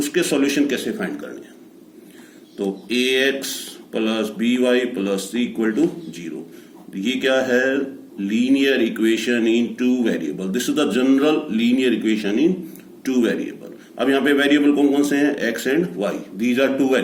सॉल्यूशन कैसे फाइंड करने हैं. तो ax plus by plus c equal to 0. ये क्या है? Linear equation in two variable. This is the general linear equation in two variable. अब यहाँ पे वेरिएबल कौन कौन से हैं? x and y. These are two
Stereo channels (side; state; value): both; identical; correlation 1.00